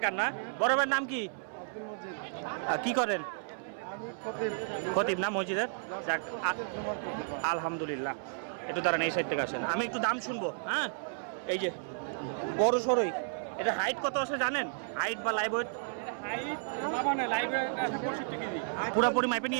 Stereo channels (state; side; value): silent; left; 56 dB below the other